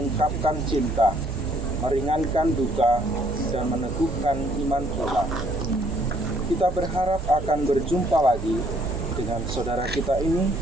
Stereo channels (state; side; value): normal; both; correlation 0.65